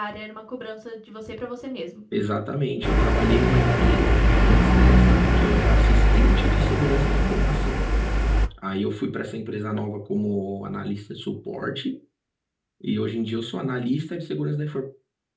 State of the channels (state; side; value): identical; both; correlation 1.00